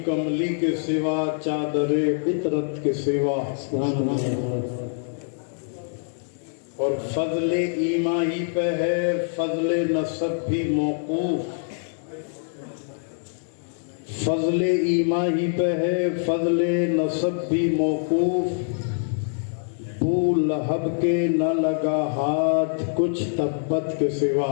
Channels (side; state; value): right; silent; digital silence